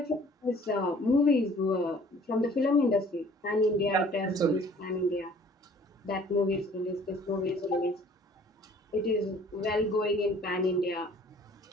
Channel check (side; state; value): both; normal; correlation 0.53